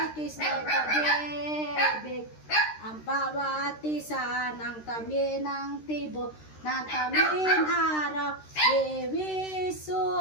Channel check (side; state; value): right; late; 13 ms